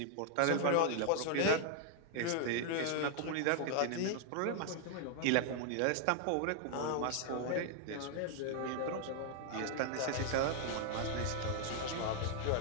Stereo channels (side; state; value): both; different; correlation 0.00